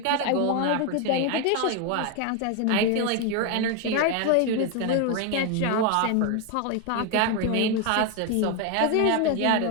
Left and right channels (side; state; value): both; different; correlation 0.01